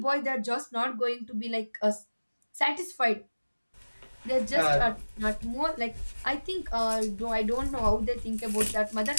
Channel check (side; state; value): both; inverted; correlation -1.00